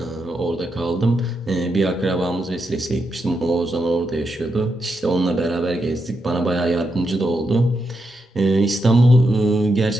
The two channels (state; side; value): normal; both; correlation 0.84